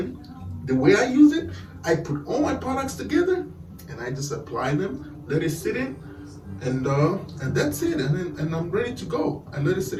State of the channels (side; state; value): both; identical; correlation 1.00